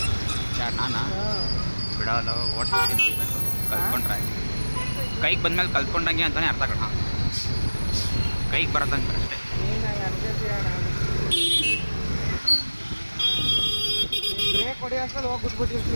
ಯಾರು ನಾನಾ? ಬಿಡಲ್ಲ, ಓಡಿಸ್ತೀನಿ ಅನ್ಬೇಕು. ಕಲ್ತ್ಕೊಂಡ್ರೆ ಕೈಗೆ ಬಂದ್ಮೇಲೆ ಕಲ್ತ್ಕೊಂಡಂಗೆ ಅಂತಲೇ ಅರ್ಥ ಕಣ. ಕೈಗೆ ಬರೋದಂಗೆ ಅಷ್ಟೇ. ನೀನು ಅನ್ಕೋತೀಯ ನಾನು ಬ್ರೇಕ್ ಹೊಡಿ ಅಷ್ಟಲ್ಲಿ ಹೋಗಿ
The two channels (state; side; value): inverted; both; correlation -1.00